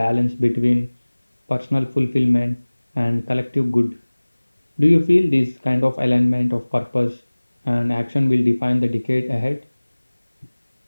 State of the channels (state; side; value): inverted; both; correlation -1.00